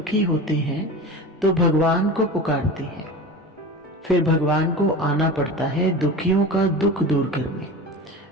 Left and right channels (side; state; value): both; normal; correlation 0.31